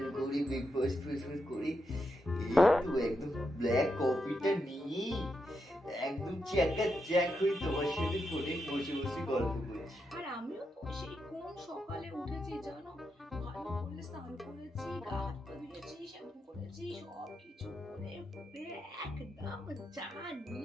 করি, ব্রেকফাস্ট ফ্রেকফাস্ট করি, এই তো একদম ব্ল্যাক কফিটা নিয়ে একদম চ্যাকা চ্যাক হয়ে তোমার সাথে ফোনে বসে বসে গল্প করছি। আর আমিও তো সেই কোন সকালে উঠেছি জানো, ভালো করে স্নান করেছি, গা হাত পা ধুয়েছি, শ্যাম্পু করেছি, সব কিছু করে ফুলে একদম চা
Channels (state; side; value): normal; both; correlation 0.84